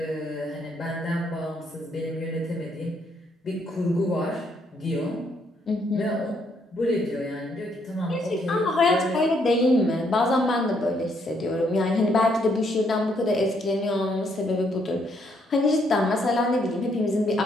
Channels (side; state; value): both; normal; correlation 0.72